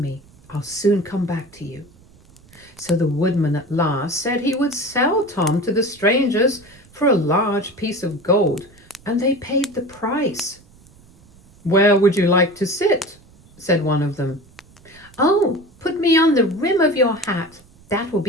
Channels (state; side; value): noise; right; rumble, 27 dB below the sound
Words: I'll soon come back to you." So the woodman at last said he would sell Tom to the strangers for a large piece of gold, and they paid the price. "Where would you like to sit?" said one of them. "Oh, put me on the rim of your hat. That will